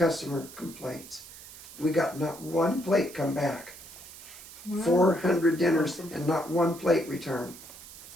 complaints. We got not one plate come back. Wow. 400 dinners and not one plate returned.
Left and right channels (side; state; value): right; noise; hiss, 16 dB below the sound